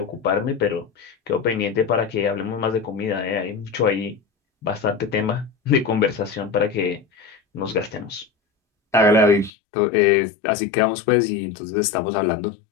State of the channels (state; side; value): drops out; right; at 9.5 s